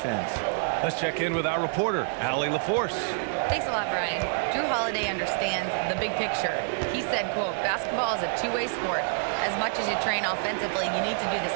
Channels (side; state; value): left; silent; digital silence